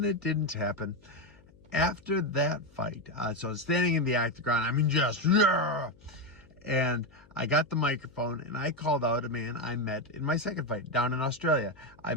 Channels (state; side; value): noise; left; hum, 27 dB below the sound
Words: it didn't happen. After that fight, so I was standing in the octagon. I mean, just, yeah. And I got the microphone and I called out a man I met in my second fight down in Australia. I